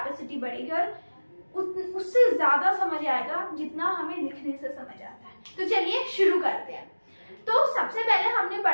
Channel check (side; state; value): both; inverted; correlation -1.00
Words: बढ़ेगी और उससे ज्यादा समझ आएगा जितना हमें लिखने से समझ आता है। तो चलिए शुरू करते हैं। तो सबसे पहले हमने